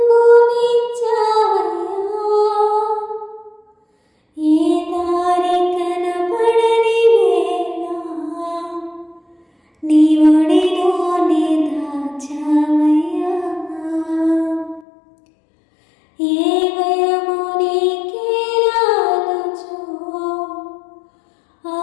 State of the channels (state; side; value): drops out; right; at 14.9 s